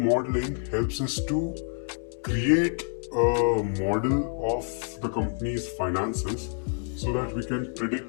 helps us to create a model of the company's finances so that we can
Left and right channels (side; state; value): right; silent; 60 dB below the other